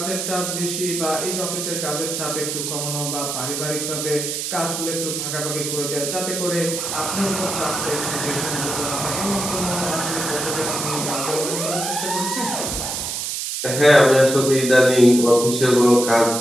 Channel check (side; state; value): right; noise; hiss, 3 dB below the sound